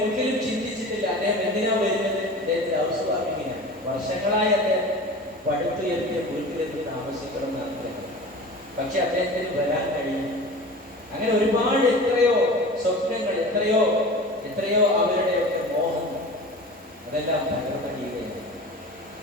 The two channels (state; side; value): normal; both; correlation 0.35